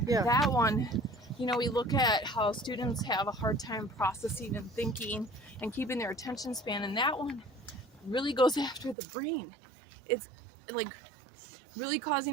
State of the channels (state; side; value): drops out; left; at 9.0 s